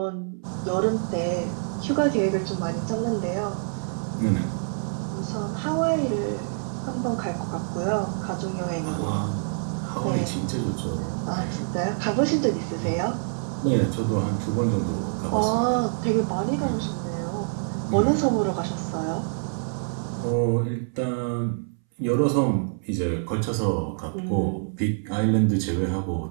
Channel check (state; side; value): silent; left; 61 dB below the other